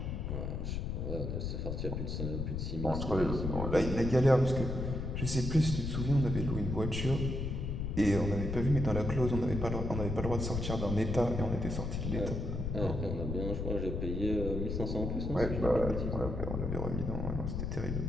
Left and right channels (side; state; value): left; noise; rumble, 2 dB below the sound